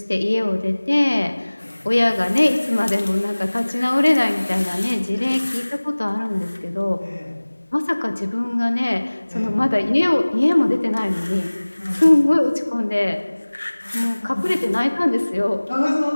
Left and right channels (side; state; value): both; inverted; correlation -1.00